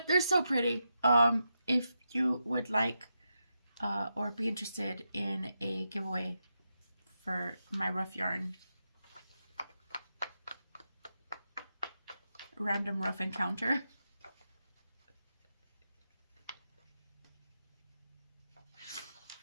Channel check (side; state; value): both; inverted; correlation -0.86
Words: they're so pretty. If you would like or be interested in a giveaway for my rough yarn, random rough encounter.